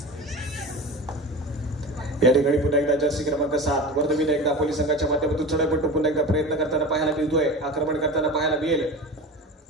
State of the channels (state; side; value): normal; both; correlation 0.31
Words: या ठिकाणी पुन्हा एकदा जर्सी क्रमांक 7 वर्धविनायक दापोली संघाच्या माध्यमातून चढाईपट्टू पुन्हा एकदा प्रयत्न करताना पाहायला मिळतोय. आक्रमण करताना पाहायला मिळेल.